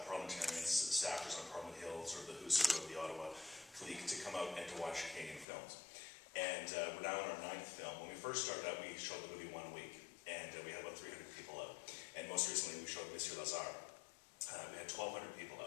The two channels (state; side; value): drops out; right; at 5.5 s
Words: parliamentarians, staffers on Parliament Hill, sort of the who's who of the Ottawa clique, to come out and to watch Canadian films. And we're now in our 9th film. When we first started out, we showed the movie 1 week, and we had about 300 people out. And most recently, we showed Monsieur Lazare. We had 1,200 people